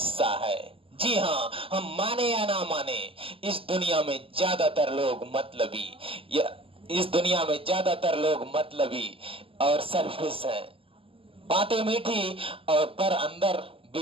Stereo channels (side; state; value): left; late; 0.26 ms